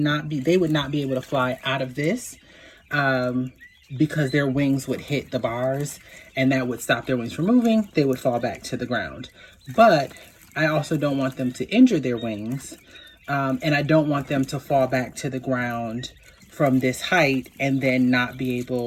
be able to fly out of this because their wings would hit the bars and that would stop their wings from moving. They would fall back to the ground. But I also don't want them to injure their wings, and I don't want them to fall back to the ground from this height and then not be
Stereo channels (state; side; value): identical; both; correlation 1.00